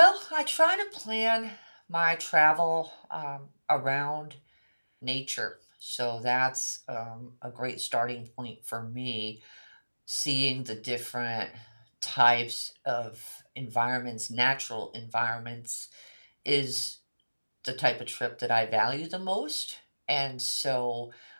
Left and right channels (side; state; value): both; inverted; correlation -1.00